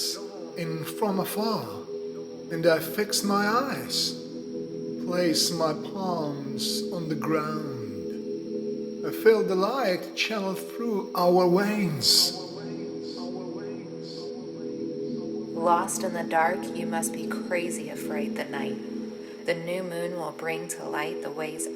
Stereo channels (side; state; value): both; identical; correlation 1.00